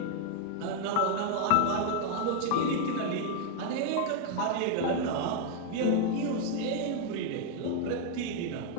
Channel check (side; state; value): both; different; correlation 0.00